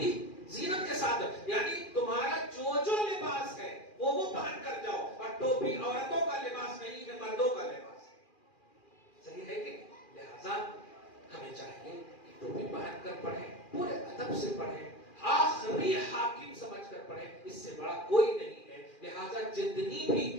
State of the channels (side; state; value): right; late; 2.4 ms